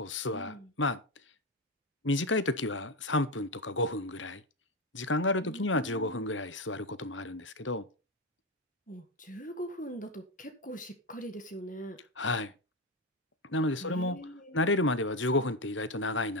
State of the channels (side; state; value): both; normal; correlation 0.12